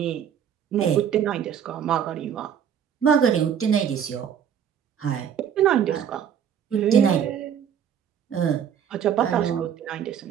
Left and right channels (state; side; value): quieter; left; 8.7 dB